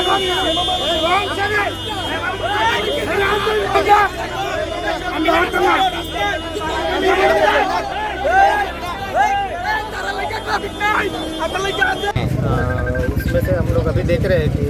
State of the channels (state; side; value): identical; both; correlation 1.00